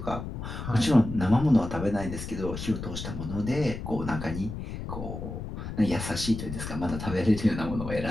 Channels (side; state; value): left; noise; rumble, 7 dB below the sound